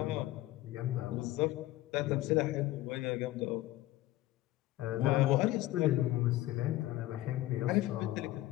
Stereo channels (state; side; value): quieter; right; 16.1 dB